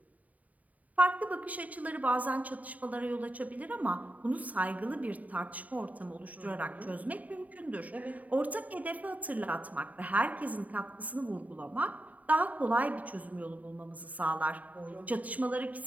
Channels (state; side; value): late; left; 0.072 ms